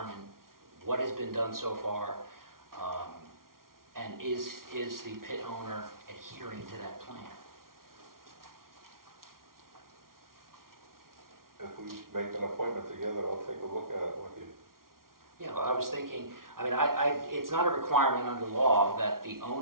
what has been done so far, and is the pit owner adhering to that plan? If we make an appointment together, I'll take a look at it with you. Yeah, well, I was thinking, it's not a requirement under law that the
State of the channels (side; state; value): left; late; 0.92 ms